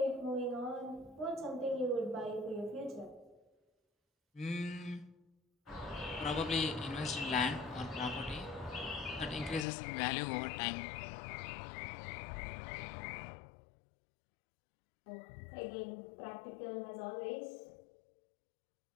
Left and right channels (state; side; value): drops out; right; at 9.7 s